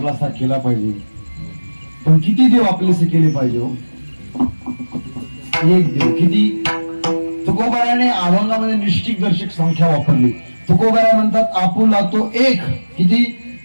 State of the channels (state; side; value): inverted; both; correlation -1.00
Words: केला पाहिजे, पण किती देव आपलेसे केले पाहिजे हो? एक देव किती? तुकोबाराने अभंगामध्ये निश्चित दर्शक संख्या वापरली. तुकोबारा म्हणतात आपुला तो एक. किती?